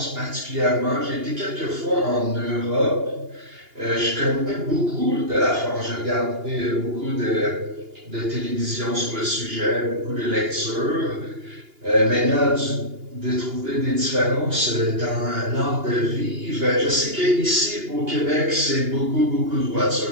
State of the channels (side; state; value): left; late; 2.8 ms